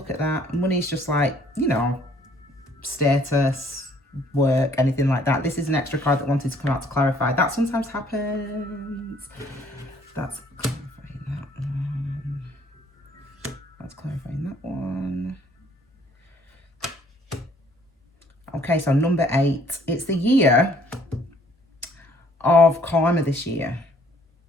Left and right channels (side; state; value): both; normal; correlation 0.61